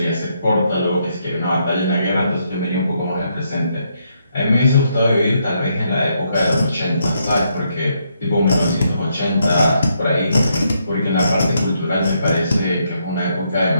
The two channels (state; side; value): inverted; both; correlation -0.76